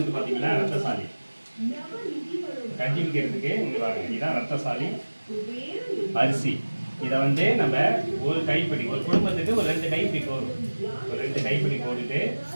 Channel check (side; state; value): both; inverted; correlation -1.00